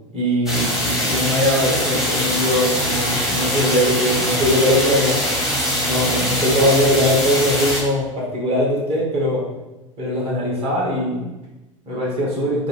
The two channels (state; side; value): normal; both; correlation 0.16